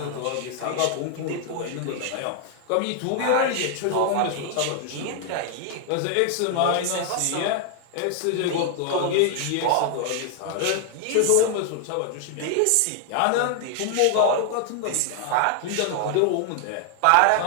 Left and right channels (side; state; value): both; different; correlation 0.00